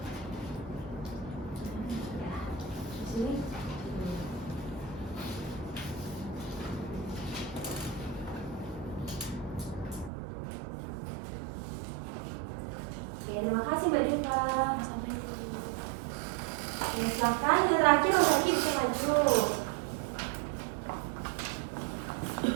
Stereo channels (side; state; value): left; drops out; at 10.1 s